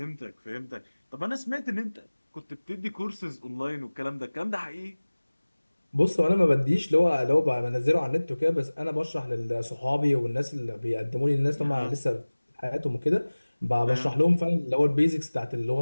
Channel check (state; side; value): inverted; both; correlation -1.00